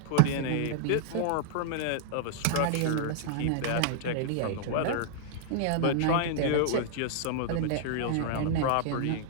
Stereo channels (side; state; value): both; different; correlation -0.01